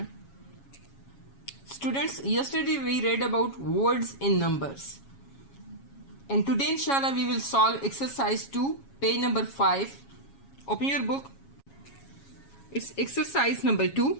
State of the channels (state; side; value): late; right; 7.3 ms